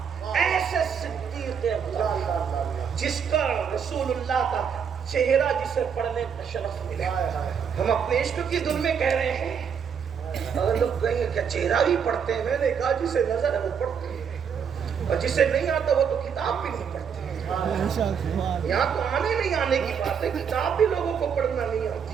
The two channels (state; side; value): quieter; left; 7.2 dB